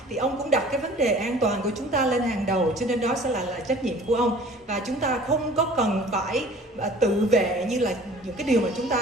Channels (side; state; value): both; normal; correlation 0.48